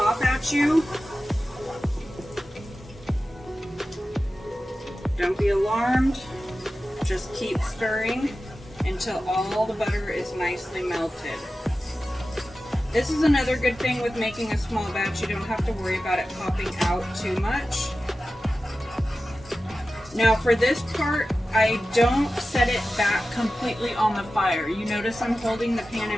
at you. Don't be alarmed. Just keep stirring until all the butter is nicely melted. This is another good thing with making a small batch. You don't have to worry about it popping out too much. Now for this part, I don't set it back completely on the fire. You notice I'm holding the pan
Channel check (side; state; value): both; normal; correlation 0.94